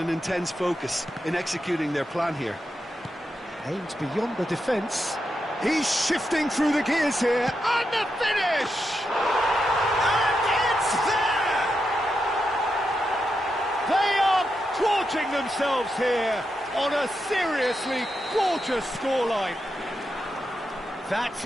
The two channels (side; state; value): both; normal; correlation 0.85